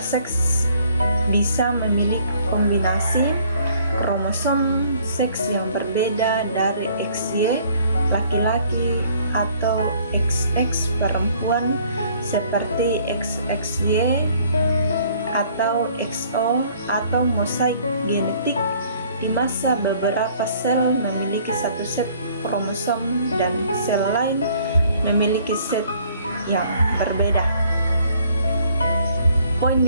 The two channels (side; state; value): both; inverted; correlation -0.60